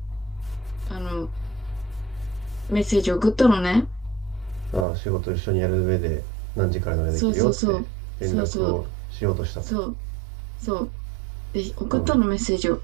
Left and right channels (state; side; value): drops out; left; at 4.9 s